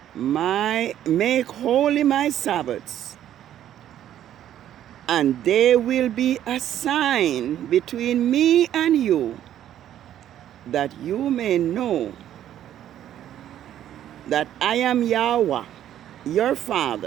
make holy my Sabbaths, and they will be a sign between me and you, that you may know that I am Yhwh, your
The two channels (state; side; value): quieter; left; 11.3 dB